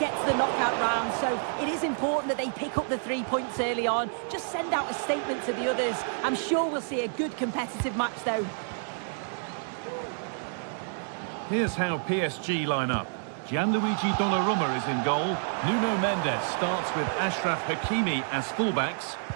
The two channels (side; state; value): left; silent; 59 dB below the other